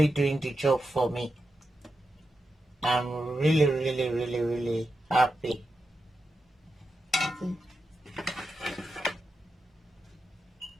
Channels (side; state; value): both; normal; correlation 0.88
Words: doing the job for me. I'm really, really, really, really happy.